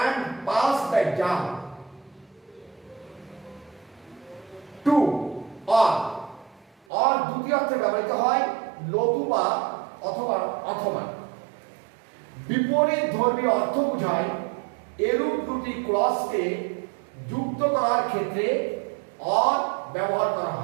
pass the exam. Two or দ্বিতীয় অর্থে ব্যবহৃত হয় নতুবা অথবা। বিপরীত ধর্মী অর্থ বোঝায় এরূপ দুটি ক্লজকে যুক্ত করার ক্ষেত্রে অর ব্যবহার করা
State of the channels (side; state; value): left; drops out; at 6.8 s